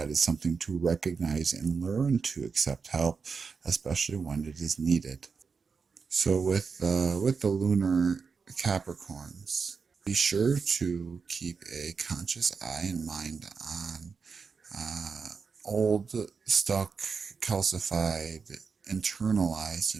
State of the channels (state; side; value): quieter; left; 5.3 dB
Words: is something to recognize and learn to accept help, especially when it is needed. So with the lunar Capricorns, be sure to keep a conscious eye and mind on uh, old, stuck, calcified, internalized